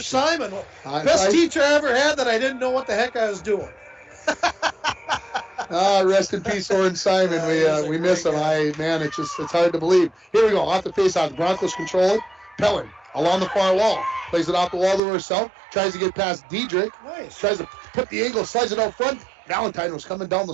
Simon. Best teacher I ever had that I didn't know what the heck I was doing. Rest in peace, Oren Simon. We miss him. Man, it's hard to believe. Here we go, off the face-off. The Broncos control it. Pellin along the far wall. Plays it off the wall to herself. Tries to get past Diedrich. Nice. Tries to put the angle, slides it out front. Valentine was coming down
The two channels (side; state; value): left; drops out; at 15.0 s